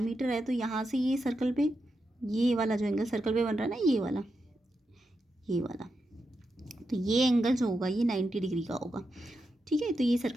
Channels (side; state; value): both; normal; correlation 0.86